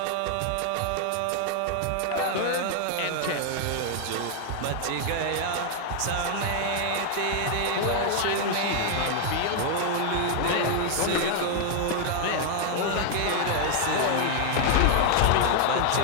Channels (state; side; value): different; both; correlation 0.00